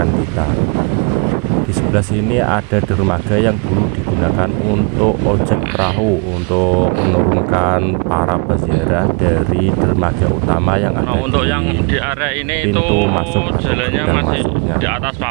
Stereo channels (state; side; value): quieter; left; 34.6 dB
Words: kita. Di sebelah sini ada dermaga yang dulu digunakan untuk ojek perahu, untuk menurunkan para peziarah dari dermaga utama yang ada untuk yang di area ini pintu itu masuk atau jalannya masih masuknya di atas